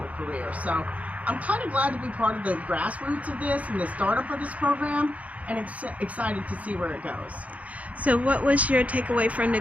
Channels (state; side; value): late; left; 0.068 ms